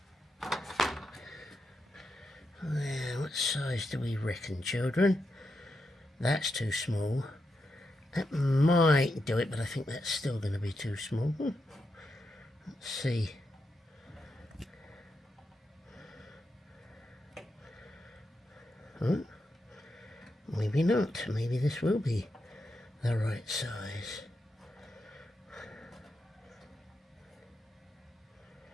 What size do we reckon, children? That's too small. That might do it, but I think that's still going to be too small. Let's see. Huh? Maybe not. Maybe this will be the right size.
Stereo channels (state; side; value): normal; both; correlation 0.85